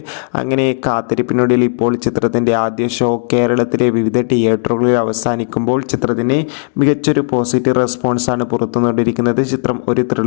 അങ്ങനെ കാത്തിരിപ്പിനൊടുവിൽ ഇപ്പോൾ ചിത്രത്തിൻ്റെ ആദ്യ ഷോ കേരളത്തിലെ വിവിധ തിയേറ്ററുകളിൽ അവസാനിക്കുമ്പോൾ ചിത്രത്തിന് മികച്ചൊരു പോസിറ്റീവ് റെസ്പോൺസാണ് പുറത്തുകൊണ്ടിരിക്കുന്നത്. ചിത്രം ഒരു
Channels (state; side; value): silent; right; 68 dB below the other